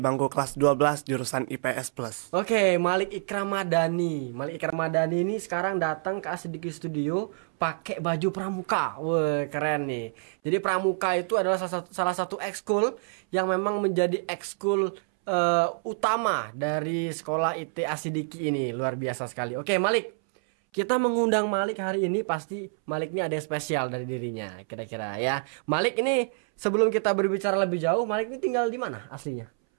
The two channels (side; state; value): left; silent; 60 dB below the other